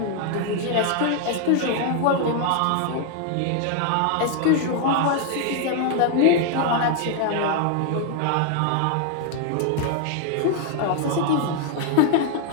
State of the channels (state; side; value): different; both; correlation 0.00